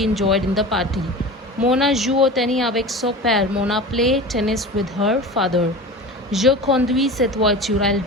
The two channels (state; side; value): normal; both; correlation 0.33